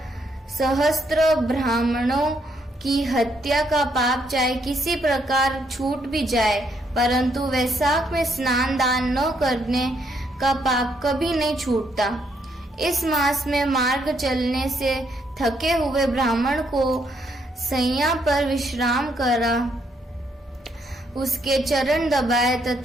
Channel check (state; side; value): normal; both; correlation 0.73